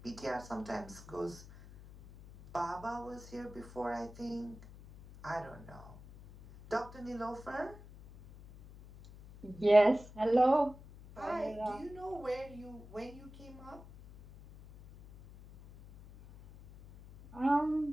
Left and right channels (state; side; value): noise; left; hum, 18 dB below the sound